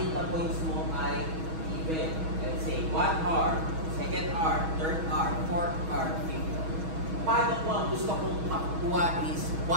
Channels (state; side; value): late; left; 6.2 ms